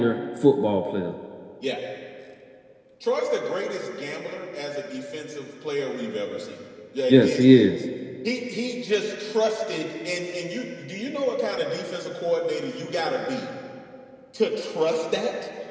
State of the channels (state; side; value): identical; both; correlation 1.00